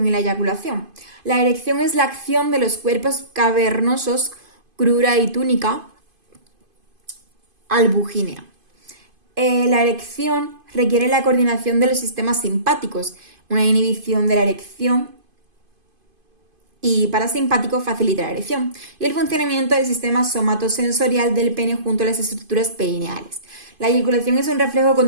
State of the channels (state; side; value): late; left; 2.5 ms